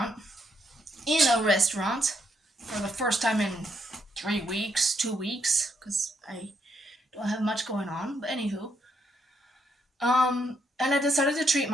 for the first time in 3 weeks, 2 weeks, because I don't have much going on. But anywho, and I decided to treat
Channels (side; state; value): both; normal; correlation 0.75